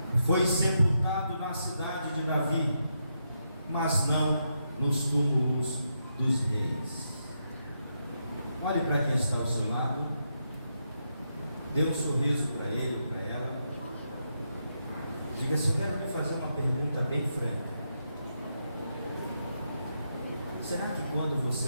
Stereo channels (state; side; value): inverted; both; correlation -0.82